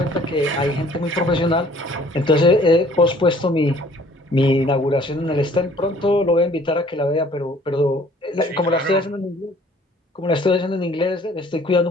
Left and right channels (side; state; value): both; normal; correlation 0.56